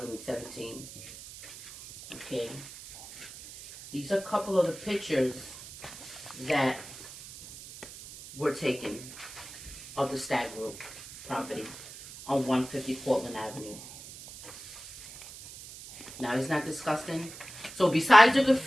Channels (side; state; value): right; noise; hiss, 15 dB below the sound